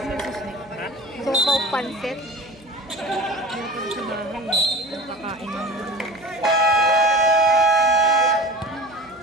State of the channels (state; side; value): noise; right; hum, 27 dB below the sound